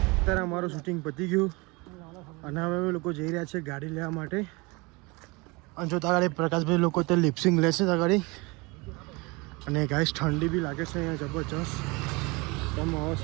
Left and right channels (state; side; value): quieter; left; 26.1 dB